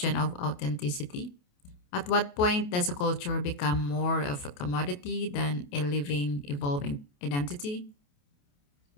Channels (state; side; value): late; right; 28 ms